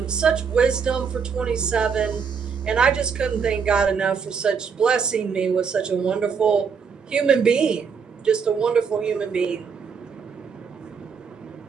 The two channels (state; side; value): quieter; left; 6.2 dB